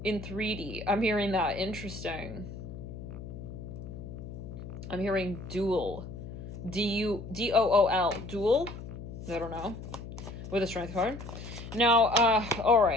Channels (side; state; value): left; noise; hum, 10 dB below the sound